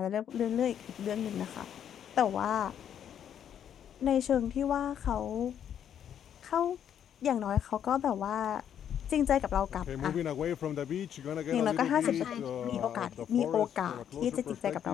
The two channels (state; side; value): quieter; right; 9.3 dB